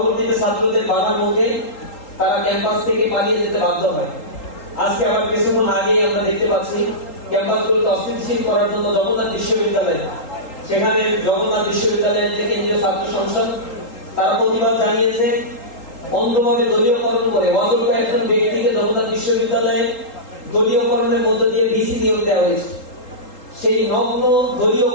ছাত্রদের বাধার মুখে তারা ক্যাম্পাস থেকে পালিয়ে যেতে বাধ্য হয়। আজকে আবার কিছুক্ষণ আগেই আমরা দেখতে পাচ্ছি ক্যাম্পাসগুলোকে অস্থিতিশীল করার জন্য জগন্নাথ বিশ্ববিদ্যালয়, সেখানে জগন্নাথ বিশ্ববিদ্যালয়ের যে কেন্দ্রীয় ছাত্র সংসদ তারা প্রতিবাদ জানিয়েছে। অন্ধভাবে দলীয়করণ করে অযোগ্য একজন ব্যক্তিকে জগন্নাথ বিশ্ববিদ্যালয়ে দলীয়করণের মধ্য দিয়ে ভিসি নিয়োগ দেওয়া হয়েছে। সেই নগ্ন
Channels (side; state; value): right; late; 3.8 ms